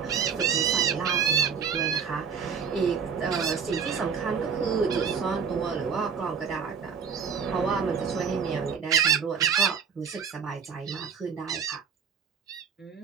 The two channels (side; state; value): left; quieter; 6.6 dB